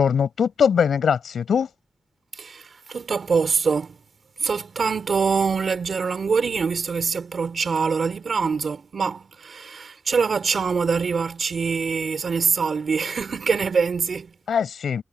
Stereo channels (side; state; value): both; normal; correlation 0.84